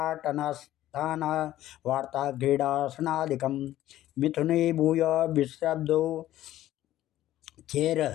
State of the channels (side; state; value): right; quieter; 13.8 dB